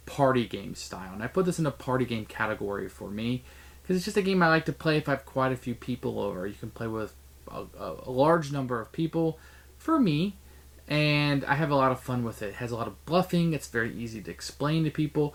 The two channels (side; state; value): both; identical; correlation 1.00